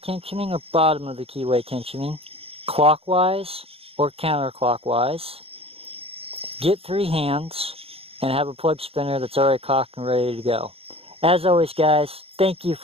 or bottom of the keyway tensioning, clockwise or counterclockwise. Get 3 hands and have a plug spinner that's already cocked and ready to go. As always, guys, thank you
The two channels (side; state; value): left; late; 0.28 ms